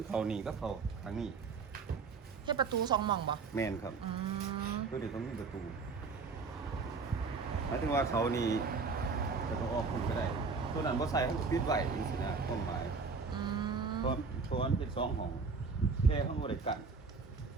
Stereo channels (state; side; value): quieter; left; 4.8 dB